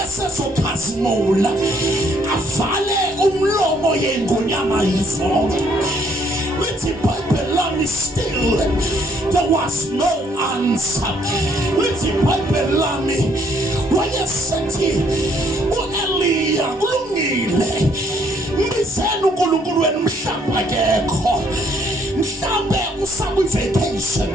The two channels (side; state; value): both; normal; correlation 0.66